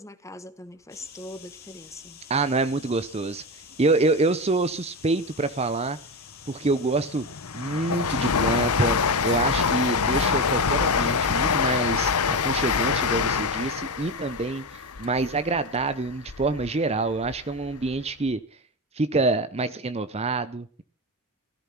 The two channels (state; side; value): normal; both; correlation 0.18